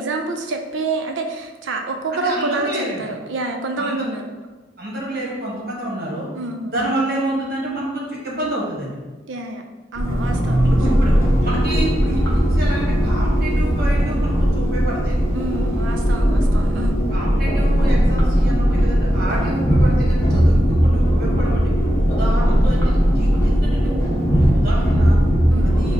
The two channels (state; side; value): normal; both; correlation 0.85